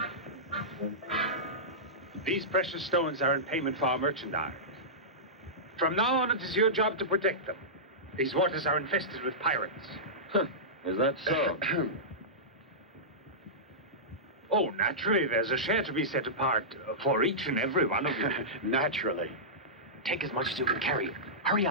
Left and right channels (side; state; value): both; normal; correlation -0.16